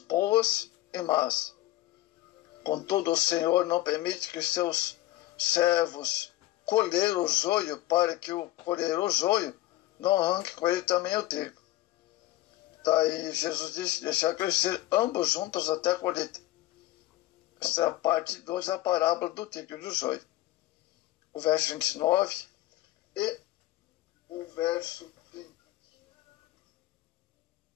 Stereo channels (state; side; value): quieter; right; 16.1 dB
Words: e más. Contudo, o Senhor não permite que seus servos colher o joio, para que o colher o joio não arranque com ele também o trigo. Daí Jesus disse: deixar crescer ambos juntos até a colheita. Esta é a parte 2 da parábola do trigo e do joio. O verso 29 e o verso 30.